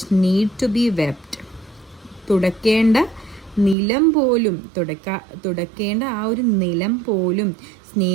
need to be swept. തുടക്കേണ്ട നിലം പോലും തുടക്കേണ്ട ആ ഒരു നിലം പോലും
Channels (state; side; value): drops out; left; at 3.8 s